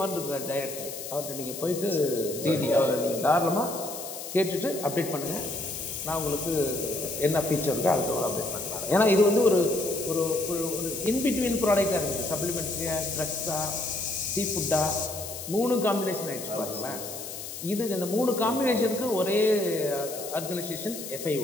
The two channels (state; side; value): noise; left; hiss, 9 dB below the sound